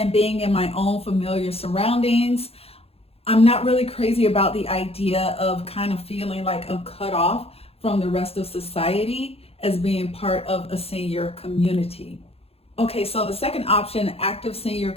being in my own familiar surroundings. I'm not really crazy about the idea of kind of feeling like I'm cut off from the rest of society as being part of a senior community. Okay, so the second option, active senior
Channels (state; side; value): late; right; 0.29 ms